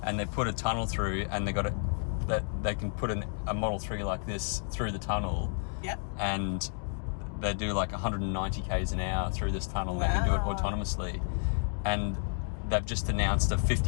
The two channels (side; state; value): right; silent; 57 dB below the other